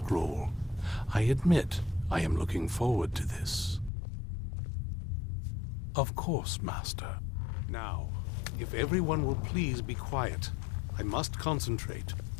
I admit I am looking forward to this. Of course, Master. Now, if everyone will please be quiet, I must concentrate.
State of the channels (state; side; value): drops out; right; at 3.9 s